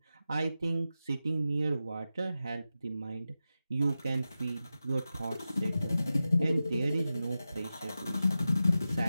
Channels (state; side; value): inverted; both; correlation -0.92